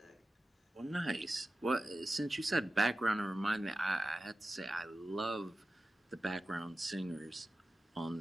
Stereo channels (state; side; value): normal; both; correlation 0.94